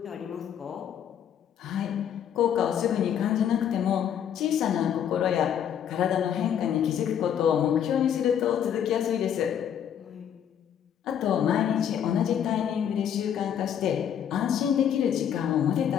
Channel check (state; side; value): quieter; right; 9.1 dB